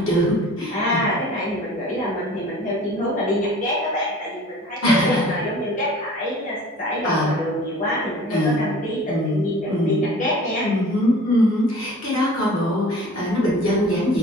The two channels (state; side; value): normal; both; correlation 0.45